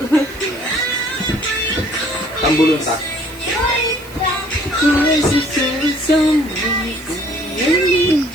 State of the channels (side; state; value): right; noise; hiss, 21 dB below the sound